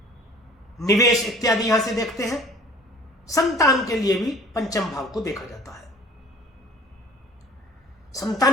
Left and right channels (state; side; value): normal; both; correlation 0.49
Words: निवेश इत्यादि यहां से देखते हैं। संतान के लिए भी पंचम भाव को देखा जाता है।